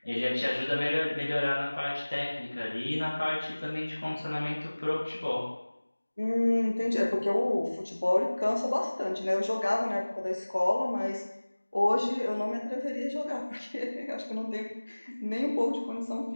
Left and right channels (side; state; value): both; inverted; correlation -1.00